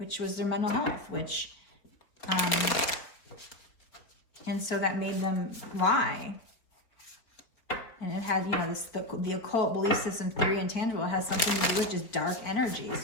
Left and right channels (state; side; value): late; right; 4.4 ms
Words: was their mental health, and so that made them lie. And it had, you know, the occult belief system theory intangible has something to do with just dark energy.